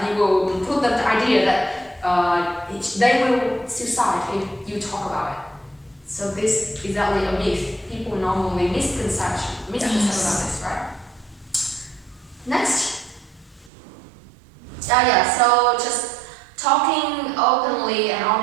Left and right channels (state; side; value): drops out; left; at 13.7 s